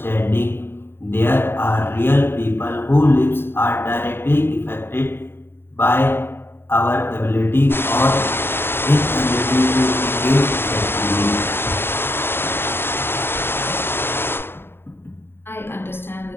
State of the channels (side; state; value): right; late; 0.11 ms